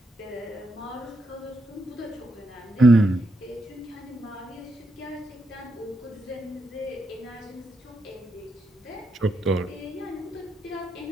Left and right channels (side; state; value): both; normal; correlation 0.81